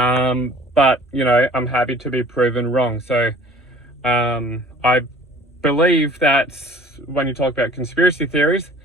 you know, I'm happy to be proven wrong. So I believe that when you talk about conspiracy theories,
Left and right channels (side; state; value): both; normal; correlation 0.49